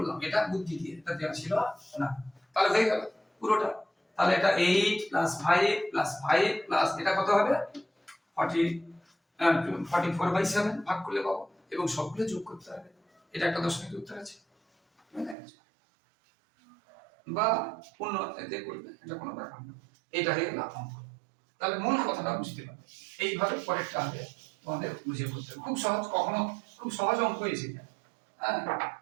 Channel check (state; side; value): drops out; left; at 15.4 s